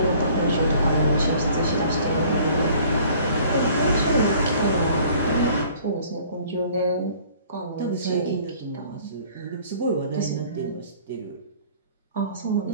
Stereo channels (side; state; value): both; inverted; correlation -0.53